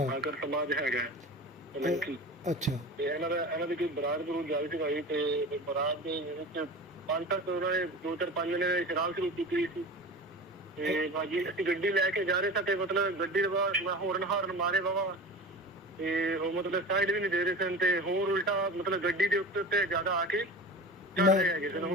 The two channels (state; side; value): normal; both; correlation 0.33